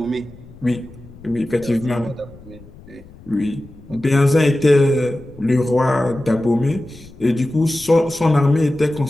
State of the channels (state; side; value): noise; left; rumble, 21 dB below the sound